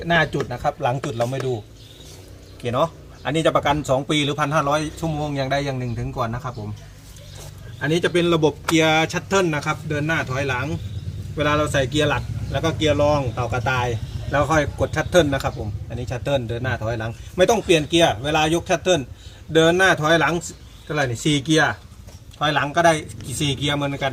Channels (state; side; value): identical; both; correlation 1.00